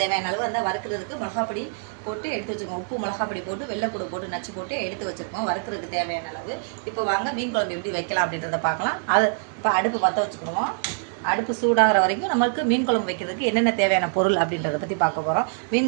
தேவையான அளவு அந்த வறுக்கிறதுக்கு மிளகாப்பொடி போட்டு எடுத்து வச்சுருக்கோம். உப்பு மிளகாப்பொடி போட்டு வெள்ளைப்பூடு போட்டு நச்சு போட்டு எடுத்து வச்சுருக்கோம் வறுக்கிறதுக்கு தேவையான அளவு. இப்போ வாங்க மீன் குழம்பு எப்படி வைக்கலாம் அப்படின்றத பார்க்கலாம். அது இப்போ அடுப்பு பற்ற வச்சுக்கணும். அடுப்பு சூடாகிற வரைக்கும் நம்மளுக்கு மீன் குழம்பு வைக்கிறதுக்கு என்னென்ன தேவையான பொருள் அப்படின்றத பற்றி பார்க்க போகிறோம்.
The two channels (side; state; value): left; silent; digital silence